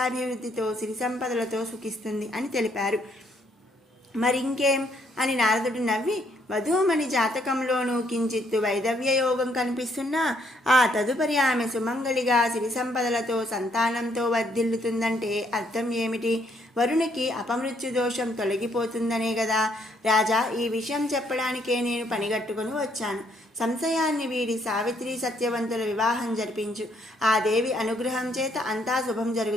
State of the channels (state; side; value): normal; both; correlation 0.70